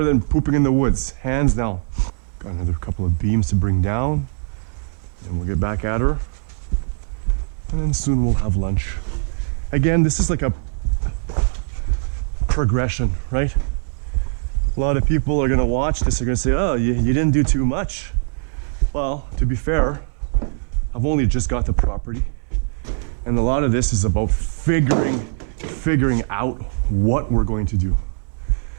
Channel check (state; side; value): silent; left; 61 dB below the other